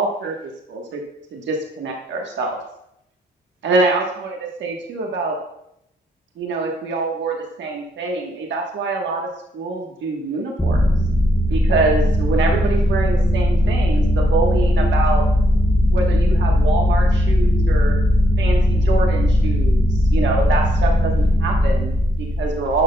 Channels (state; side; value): normal; both; correlation 0.75